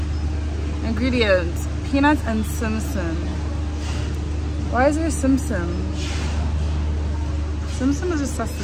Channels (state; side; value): identical; both; correlation 1.00